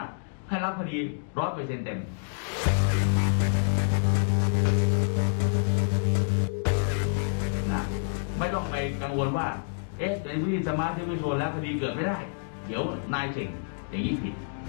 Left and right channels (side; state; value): right; silent; digital silence